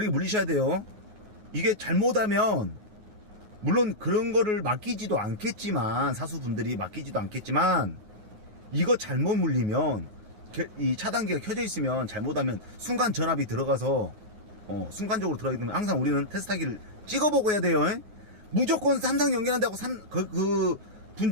물리셔야 돼요. 이게 잘못하면, 물론 그런 거를 맡기지도 않겠지만, 사수분들이 맡기지도 않겠지만, 이거 잘못 물리면, 이 차단기가 켜져 있으면 잘못하면 순간 전압이 들어가서, 순간적으로 들어가기 때문에 항상 우리는 테스트하기를 찍어보고 해야 돼요. 무조건 3상 연결한다고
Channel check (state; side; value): late; left; 9.5 ms